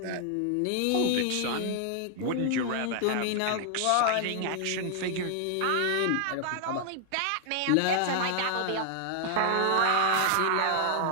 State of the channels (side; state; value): both; different; correlation 0.00